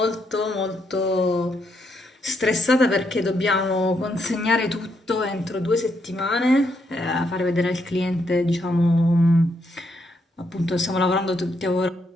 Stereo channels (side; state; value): both; normal; correlation 0.77